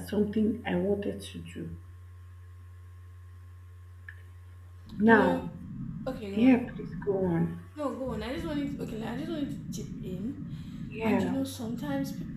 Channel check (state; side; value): identical; both; correlation 1.00